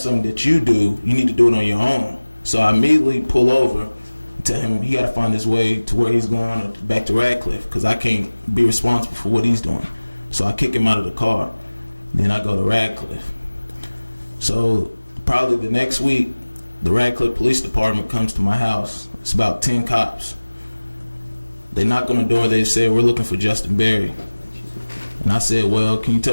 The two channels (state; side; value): inverted; both; correlation -1.00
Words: that you do, you need to do it on your own." So I immediately pull over and tell him he got to find his way to where he's going or back to Radcliffe because I can't be responsible for what he's doing. So I kick him out of the car. Then I go to Radcliffe. So probably the next week, the Radcliffe Police Department comes to my house. It's about 10 cops. They knock on the door. They say, "We're looking for Justin Berry." And I said, "Well, can you